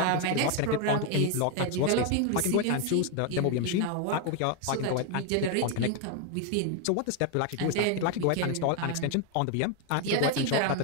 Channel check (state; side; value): different; both; correlation 0.01